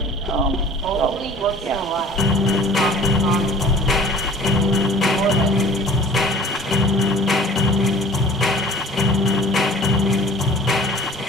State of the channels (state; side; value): normal; both; correlation 0.48